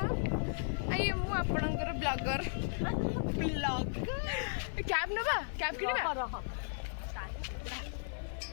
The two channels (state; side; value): silent; right; digital silence